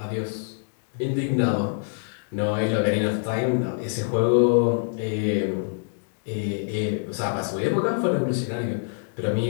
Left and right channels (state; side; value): silent; right; digital silence